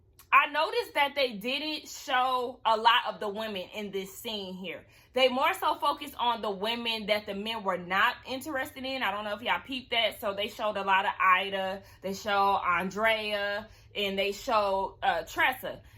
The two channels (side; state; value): both; identical; correlation 1.00